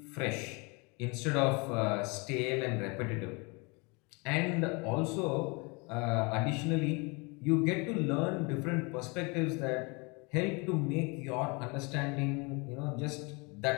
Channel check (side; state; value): right; quieter; 29.4 dB